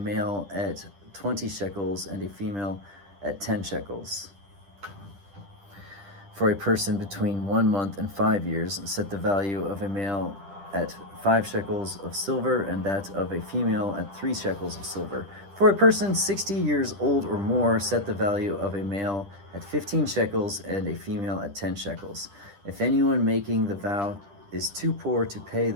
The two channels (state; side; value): late; left; 10 ms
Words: at 20 shekels and a female at 10 shekels. For a person between 1 month and 5 years, set the value of a male at 5 shekels of silver and that of a female at 3 shekels of silver. For a person 60 years old or more, set the value of a male at 15 shekels and a female at 10 shekels. If anyone making the vow is too poor to pay